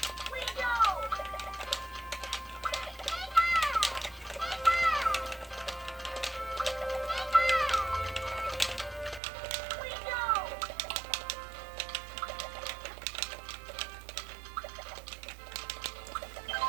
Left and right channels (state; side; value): drops out; left; at 9.2 s